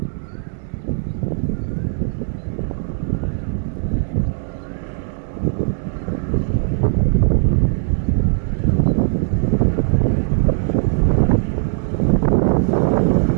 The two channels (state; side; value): silent; left; digital silence